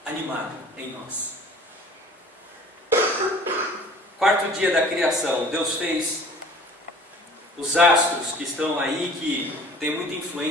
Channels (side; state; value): both; normal; correlation 0.47